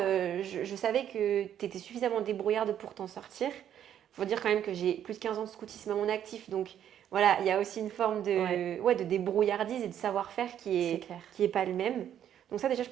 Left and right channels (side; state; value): left; quieter; 10.1 dB